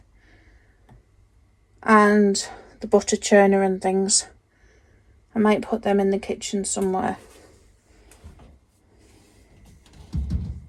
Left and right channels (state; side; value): identical; both; correlation 1.00